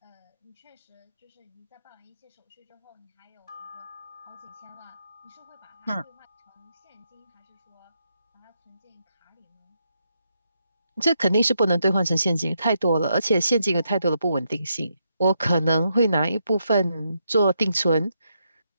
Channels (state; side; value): inverted; both; correlation -0.80